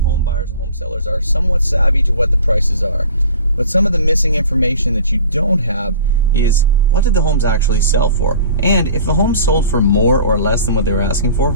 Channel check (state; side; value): inverted; both; correlation -0.43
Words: buyers and home sellers are somewhat savvy to what the prices are. But some of the missing information that you don't have is, what did the homes actually sell for? And if the home sold for more or less than what they were asking for,